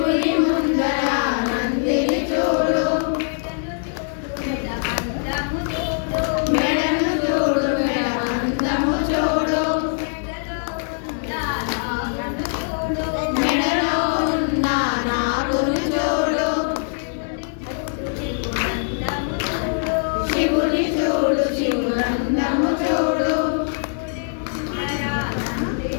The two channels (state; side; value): silent; right; digital silence